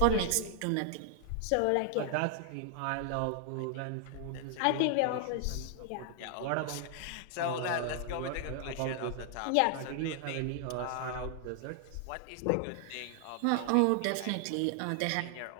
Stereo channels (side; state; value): both; different; correlation 0.00